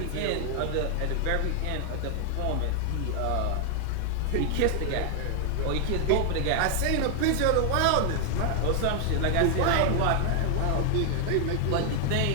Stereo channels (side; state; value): both; different; correlation 0.00